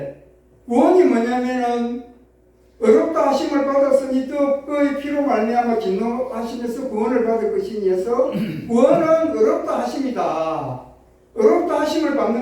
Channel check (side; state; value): both; identical; correlation 1.00